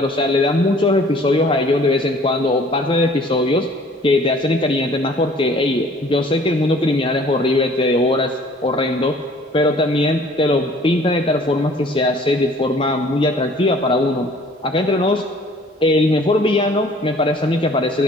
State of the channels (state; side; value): normal; both; correlation 0.53